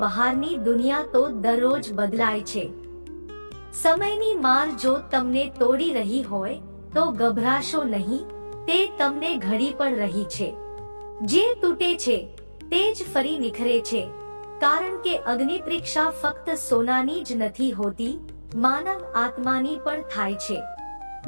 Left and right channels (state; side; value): inverted; both; correlation -1.00